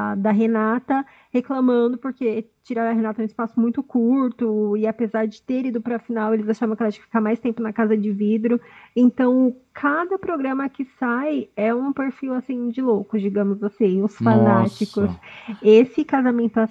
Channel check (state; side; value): identical; both; correlation 1.00